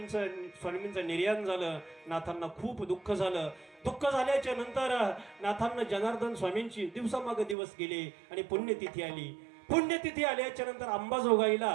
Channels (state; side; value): drops out; left; at 7.6 s